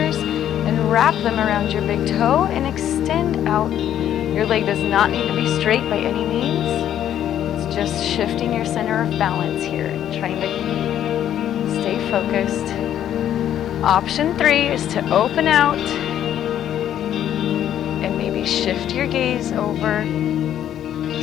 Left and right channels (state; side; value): quieter; right; 10.8 dB